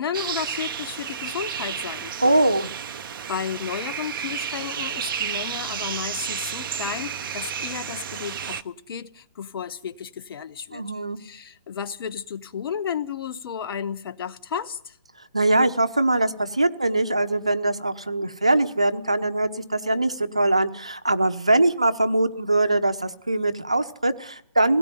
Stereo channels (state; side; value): inverted; both; correlation -0.78